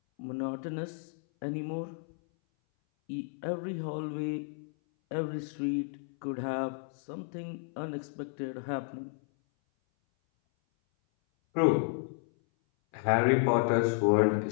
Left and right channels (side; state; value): right; silent; 56 dB below the other